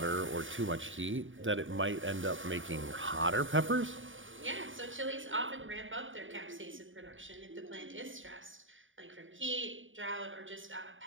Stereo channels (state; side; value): late; left; 0.57 ms